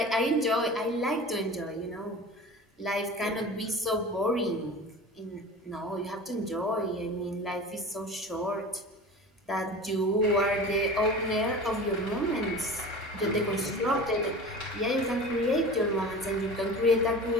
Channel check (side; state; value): both; normal; correlation 0.36